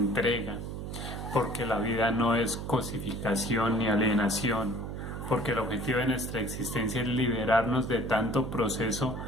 porque la vida no es cosificación ni alienación, porque el objetivo de nuestra existencia es liberarnos de tanto proceso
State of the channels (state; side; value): noise; right; hum, 6 dB below the sound